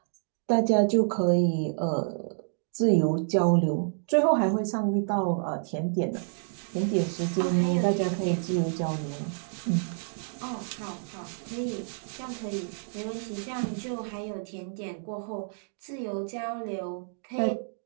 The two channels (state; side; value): silent; left; digital silence